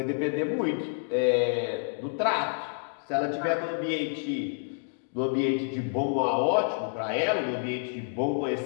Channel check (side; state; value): right; silent; digital silence